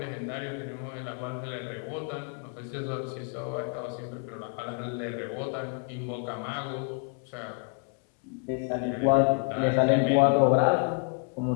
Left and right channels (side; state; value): right; quieter; 35.6 dB